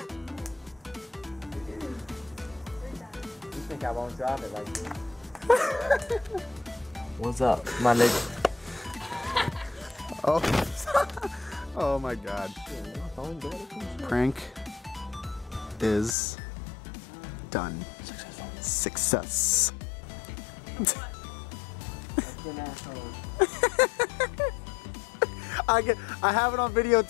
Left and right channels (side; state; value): right; drops out; at 16.2 s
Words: You think I won't drop it like this? What's up, my nigga? Oh. Oh my god. Prank is done. Success. I have it on video